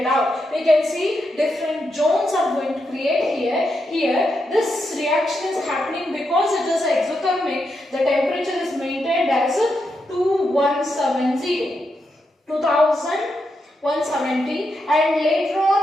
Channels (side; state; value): both; normal; correlation 0.84